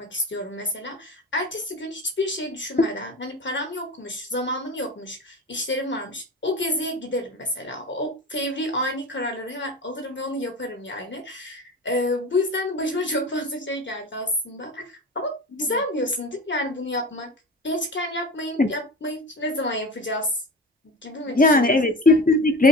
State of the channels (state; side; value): normal; both; correlation 0.32